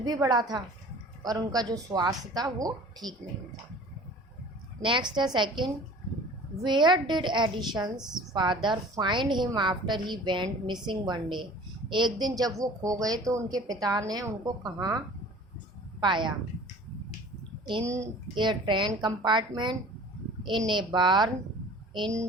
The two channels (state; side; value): normal; both; correlation 0.45